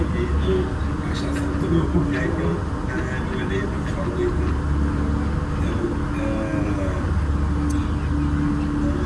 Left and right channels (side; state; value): both; identical; correlation 1.00